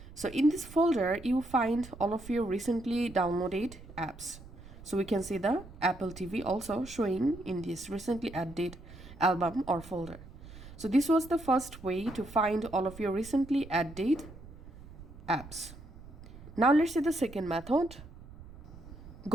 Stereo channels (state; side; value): noise; right; rumble, 17 dB below the sound